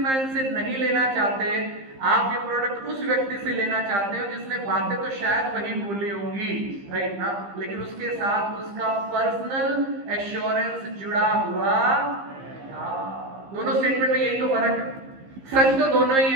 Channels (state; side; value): late; left; 15 ms